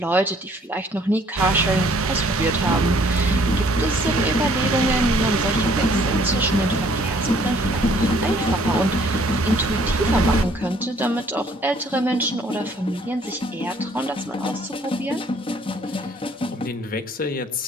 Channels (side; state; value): both; normal; correlation 0.60